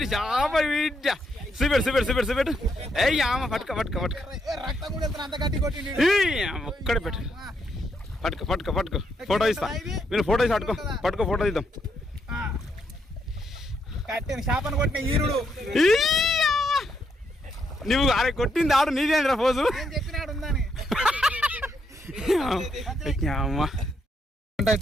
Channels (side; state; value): both; normal; correlation 0.77